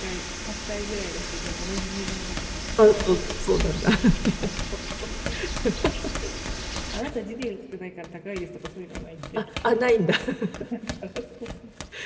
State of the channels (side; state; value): both; identical; correlation 1.00